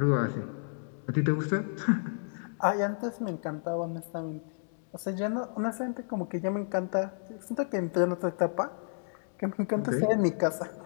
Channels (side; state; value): right; silent; digital silence